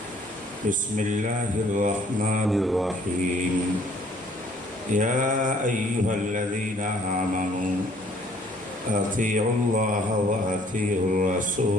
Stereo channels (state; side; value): normal; both; correlation 0.60